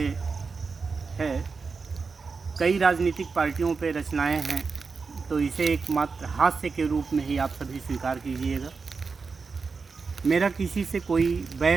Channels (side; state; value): left; quieter; 4.8 dB